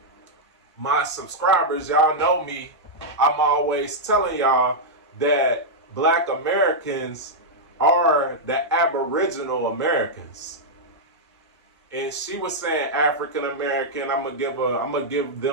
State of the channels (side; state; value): both; normal; correlation -0.06